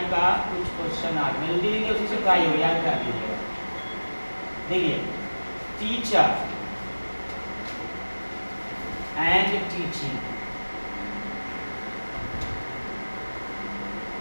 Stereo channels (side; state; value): both; inverted; correlation -1.00